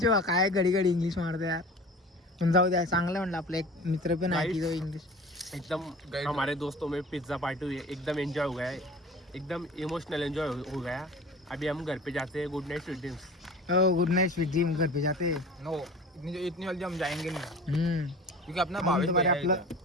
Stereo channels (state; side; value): normal; both; correlation 0.39